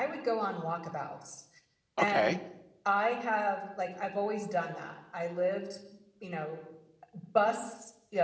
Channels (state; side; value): identical; both; correlation 1.00